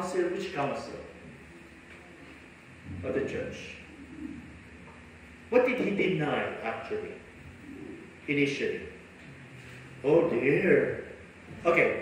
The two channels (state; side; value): identical; both; correlation 1.00